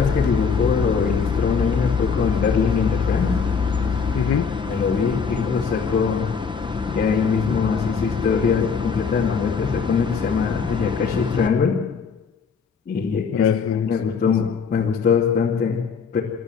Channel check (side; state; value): right; quieter; 5.7 dB